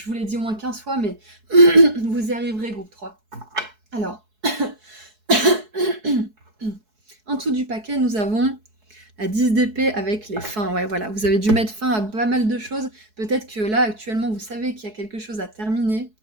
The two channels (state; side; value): late; left; 4.7 ms